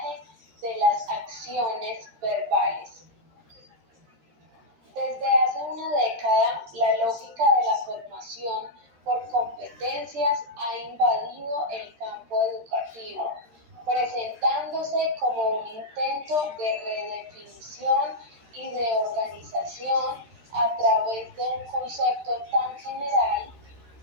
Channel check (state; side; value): late; left; 13 ms